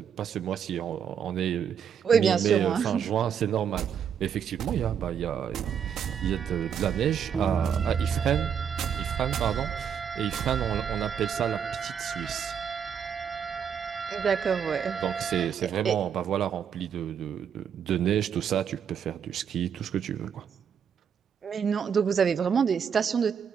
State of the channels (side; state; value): left; quieter; 7.8 dB